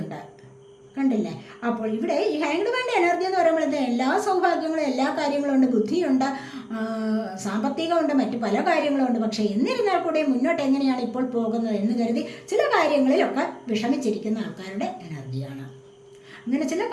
ഉണ്ട്. കണ്ടില്ലേ, അപ്പോൾ ഇവിടെ ഈ ഹാങ്ഡ് മാൻ്റെ എനർജി എന്ന് പറയുമ്പോൾ എല്ലാ സൗഭാഗ്യങ്ങളും എല്ലാ കാര്യങ്ങളും ഉണ്ട്, ബുദ്ധിയുണ്ട്, സാമ്പത്തികമുണ്ട്, മറ്റു പല കാര്യങ്ങളുമുണ്ട്. പക്ഷേ എന്നിരുന്നാൽ കൂടെ മുന്നോട്ട് എങ്ങനെയാണ് ഇപ്പോൾ പോകുന്നത് എന്ന് കരുതി ചില കാര്യങ്ങളിലൊക്കെ വിഷമിച്ചിരിക്കുന്ന ആൾക്കാരുടെ എനർജിയാണ്. അങ്ങനെ ചില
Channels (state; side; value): identical; both; correlation 1.00